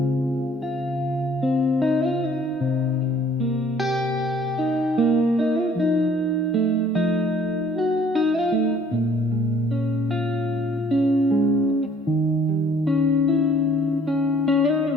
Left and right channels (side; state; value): both; normal; correlation 0.58